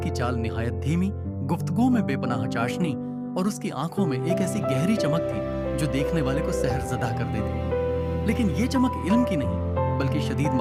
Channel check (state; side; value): identical; both; correlation 1.00